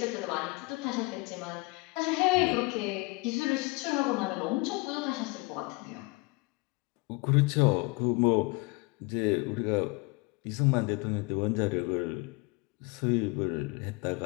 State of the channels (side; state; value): right; quieter; 25.8 dB